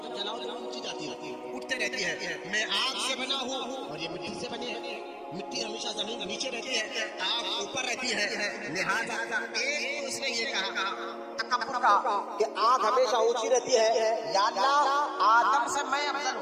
جلاؤ جلاؤ اونچی جاتی ہے، اٹھتے رہتی ہے. میں آگ سے بنا ہوں اور یہ مٹی سے بنے ہیں، مٹی ہمیشہ زمین کے نیچے رہتی ہے، آگ اوپر رہتی ہے. لہذا ایک اس نے یہ کہا تکبر کا کہ آگ ہمیشہ اونچی رہتی ہے، یا اللہ آدم سے میں افضل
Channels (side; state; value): both; identical; correlation 1.00